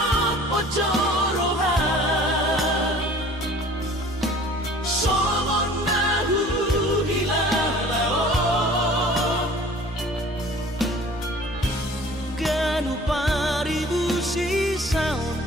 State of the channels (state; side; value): normal; both; correlation 0.48